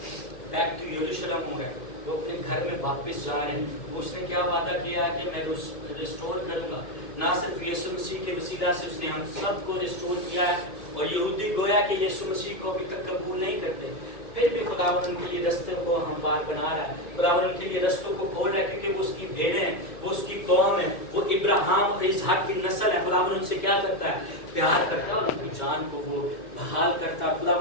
बैक टू यरूशलेम हो गए, वो अपने घर में वापस जा रहे हैं। उसने क्या वादा किया है कि मैं रिस्टोर करूंगा। ना सिर्फ यीशु मसीह के वसीला से उसने हम सबको रिस्टोर किया है और यहूदी गोया कि यीशु मसीह को अभी तक कबूल नहीं करते, फिर भी खुदावन उनके लिए रस्तों को हमवार बना रहा है। खुदावन उनके लिए रस्तों को खोल रहा है क्योंकि वो उसकी भेड़ें हैं, वो उसकी कौम है, वो इब्राहिम और इसहाक की नस्ल है। खुदावन उनसे क्या करता है? प्यार करता है और उनकी जान को वो बहाल करता है।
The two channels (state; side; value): late; right; 2.2 ms